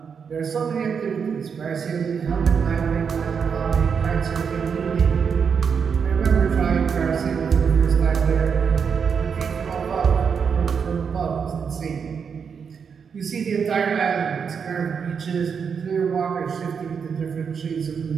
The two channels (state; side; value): quieter; left; 6.4 dB